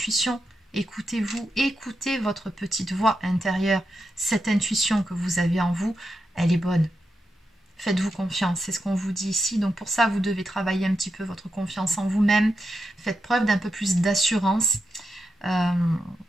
Écoutez-vous, écoutez votre petite voix intérieure. Cette intuition que vous avez en vous, elle est bonne. Faites-vous confiance, c'est ce qu'on vous dit ici. Donc pour ça, vous devez travailler un petit peu votre confiance en vous-même. Faites preuve d'un peu plus d'assurance.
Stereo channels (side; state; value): both; normal; correlation 0.87